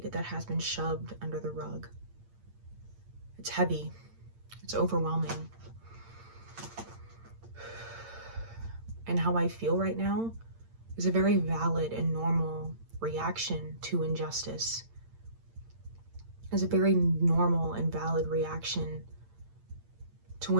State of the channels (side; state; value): left; late; 8.8 ms